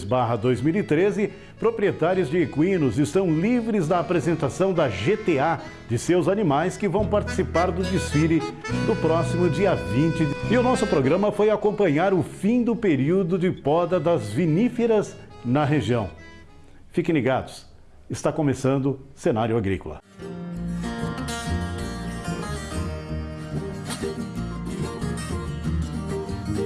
proprietários de equinos estão livres da apresentação da GTA de seus animais que vão participar do desfile do próximo dia 20. E o nosso programa foi acompanhar o fim do período de poda das viníferas na região. Fiquem ligados, está começando Cenário Agrícola.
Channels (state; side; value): identical; both; correlation 1.00